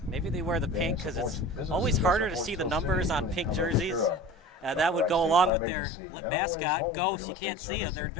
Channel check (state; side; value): drops out; right; at 5.5 s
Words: Maybe they wear the pink because it's always harder to see the numbers on pink jerseys. That would go along with their mascot, Ghost. You can't see them. They're